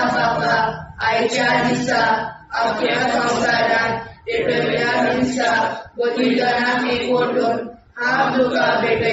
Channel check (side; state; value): both; identical; correlation 1.00